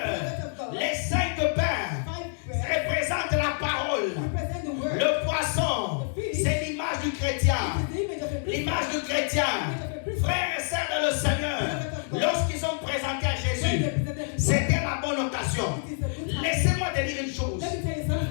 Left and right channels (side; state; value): right; silent; 60 dB below the other